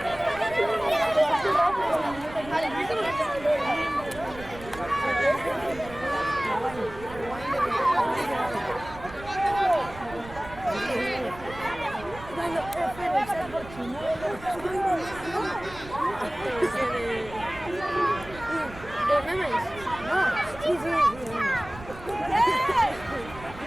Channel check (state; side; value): noise; right; rumble, 16 dB below the sound